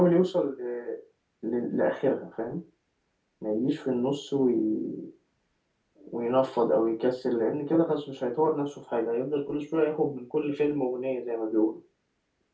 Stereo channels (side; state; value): both; identical; correlation 1.00